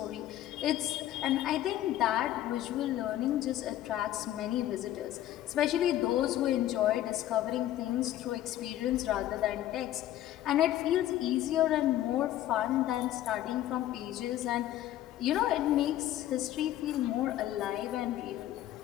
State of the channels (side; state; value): right; quieter; 13.1 dB